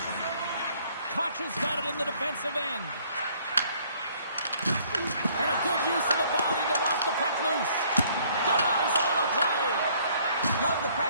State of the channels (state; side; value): inverted; both; correlation -0.61